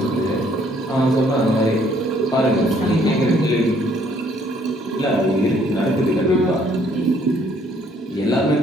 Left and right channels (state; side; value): normal; both; correlation 0.64